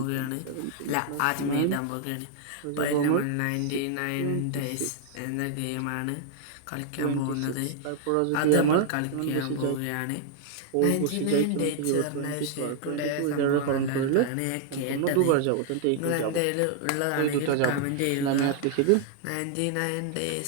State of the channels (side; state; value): both; different; correlation 0.00